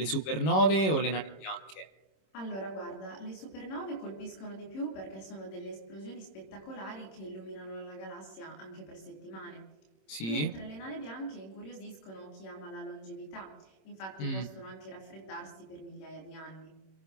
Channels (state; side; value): late; right; 26 ms